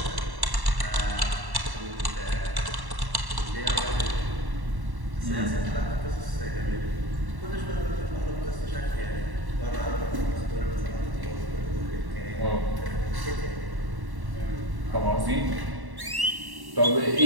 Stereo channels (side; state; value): left; late; 1.1 ms